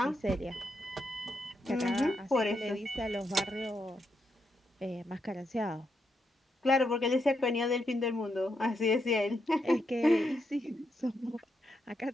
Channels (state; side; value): normal; both; correlation 0.81